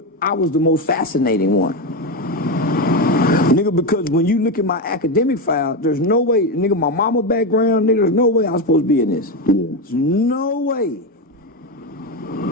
I was the most fascinating one. Nigga, because when you look at my academic file, there's no way, nigga, my mama background, nigga, there's no way I was supposed to be in this. Yeah. There's no way.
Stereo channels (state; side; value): normal; both; correlation 0.12